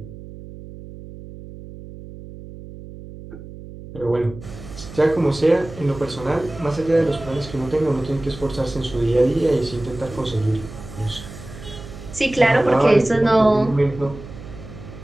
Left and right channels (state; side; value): noise; right; hum, 15 dB below the sound